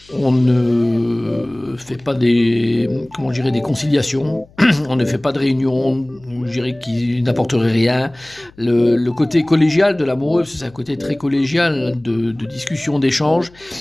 On ne fait pas des conciliations, on ne fait pas de réunions, je dirais qui n'apporteraient rien. Le côté collégial de l'amoureux, c'est un côté très collégial de discussion, d'échange.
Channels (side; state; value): left; noise; hum, 27 dB below the sound